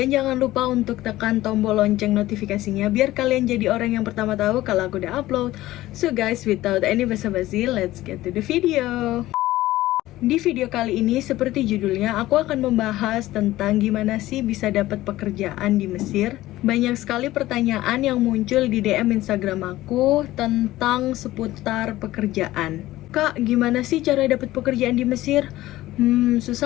jangan lupa untuk tekan tombol lonceng notifikasinya, biar kalian jadi orang yang pertama tahu kalau aku udah upload. So guys, without any basa-basi, let's get to the video. Di video kali ini, seperti judulnya, aku akan membahas tentang gimana sih bisa dapat pekerjaan di Mesir. Banyak sekali pertanyaan yang muncul di DM Instagram aku tentang seputar pekerjaan. Kak, gimana sih cara dapat pekerjaan di Mesir?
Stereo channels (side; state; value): right; quieter; 16.3 dB